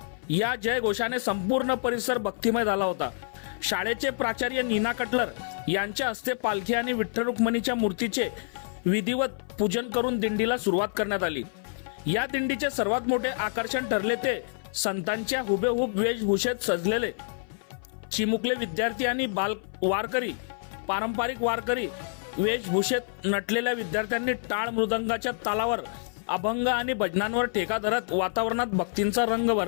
या जयघोषाने संपूर्ण परिसर भक्तिमय झाला होता। शाळेचे प्राचार्य नीना कटलर यांच्या हस्ते पालखी आणि विठ्ठल रुक्मिणीच्या मूर्तीचे विधिवत पूजन करून दिंडीला सुरुवात करण्यात आली। या दिंडीचे सर्वात मोठे आकर्षण ठरले ते संतांच्या हुबेहूब वेशभूषेत सजलेले चिमुकले विद्यार्थी आणि बाल वारकरी। पारंपरिक वारकरी वेशभूषेत नटलेल्या विद्यार्थ्यांनी टाळ मृदंगाच्या तालावर अभंग आणि भजनांवर ठेका धरत वातावरणात भक्तींचा रंग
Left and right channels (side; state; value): right; silent; 56 dB below the other